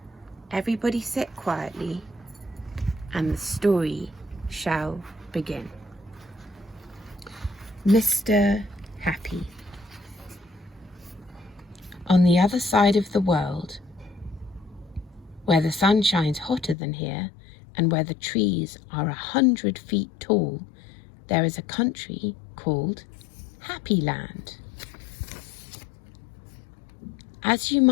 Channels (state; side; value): drops out; right; at 16.8 s